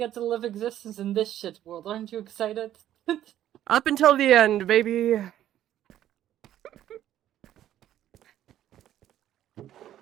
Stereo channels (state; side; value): quieter; left; 12.0 dB